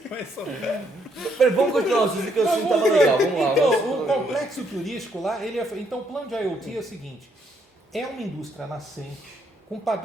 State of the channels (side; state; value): both; normal; correlation 0.72